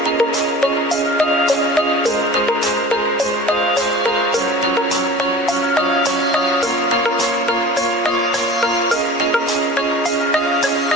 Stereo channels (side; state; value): both; normal; correlation 0.40